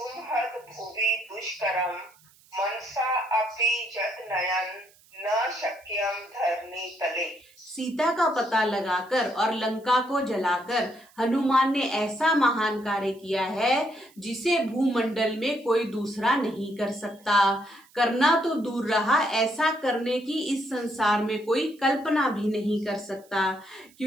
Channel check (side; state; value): right; noise; hiss, 29 dB below the sound